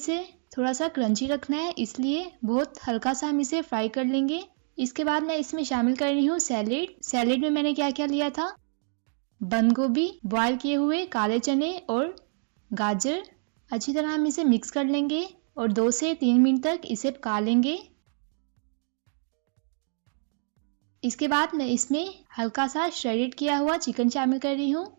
थोड़ा सा क्रंची रखना है, इसलिए बहुत हल्का सा हम इसे फ्राई कर लेंगे। इसके बाद मैं इसमें शामिल कर रही हूँ सैलेड। सैलेड में मैंने क्या क्या लिया था, बंद गोभी, बॉयल किए हुए काले चने और गाजर। अच्छी तरह हम इसे मिक्स कर लेंगे और 2 से 3 मिनट तक इसे पका लेंगे। इसके बाद मैं इसमें हल्का सा श्रेडेड किया हुआ चिकन शामिल कर रही हूँ।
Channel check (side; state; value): left; silent; 60 dB below the other